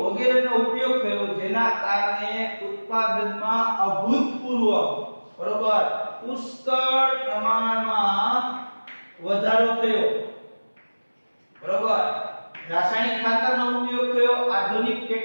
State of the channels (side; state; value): both; inverted; correlation -1.00